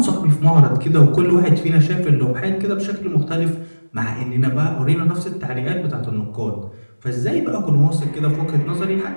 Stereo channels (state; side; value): inverted; both; correlation -1.00